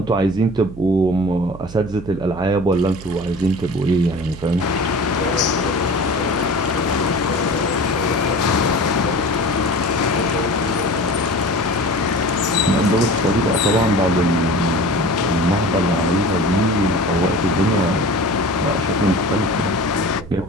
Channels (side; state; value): right; noise; hum, 15 dB below the sound